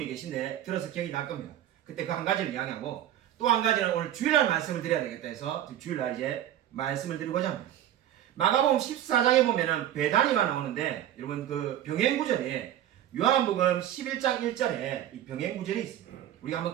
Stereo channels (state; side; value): quieter; left; 11.6 dB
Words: 계신데 들어서 기억이 날 겁니다. 그때 그 한 가지를 이야기하고 또 한 가지는 오늘 주일날 말씀을 드려야 되겠다 해서 주일날 이제 말씀을 드리고자 합니다. 마가복음 14장에 보면은 배단위가 나오는데 여러분 그 병행구절에 요한복음 11장 1절에 이 병행구절이 있습니다. 우리가 한번